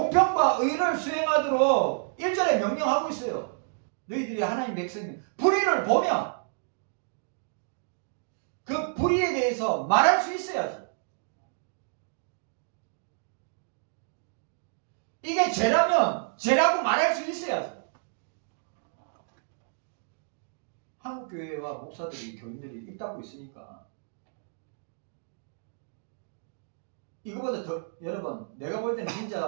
의를 수행하도록 1절에 명령하고 있어요. 너희들이 하나님 백성이면 불의를 보면 그 불의에 대해서 말할 수 있어야지. 이게 죄라면 죄라고 말할 수 있어야지. 한국교회와 목사들이 교인들이 입 닫고 있으니까 이거보다 더 여러분 내가 볼 때는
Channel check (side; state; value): left; silent; digital silence